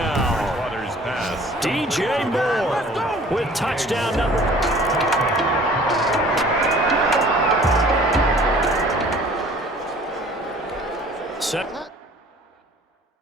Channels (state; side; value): normal; both; correlation 0.50